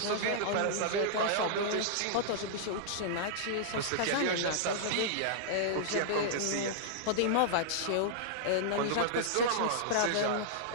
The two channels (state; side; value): different; both; correlation -0.02